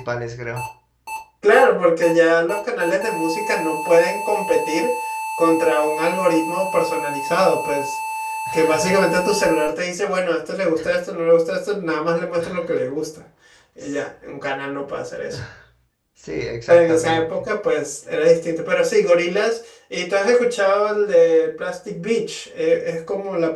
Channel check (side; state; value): both; identical; correlation 1.00